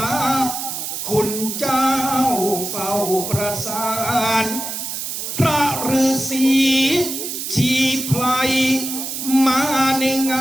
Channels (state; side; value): noise; right; hiss, 5 dB below the sound